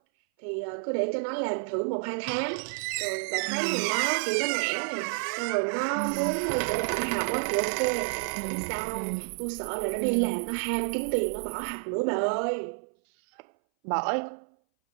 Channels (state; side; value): silent; left; 58 dB below the other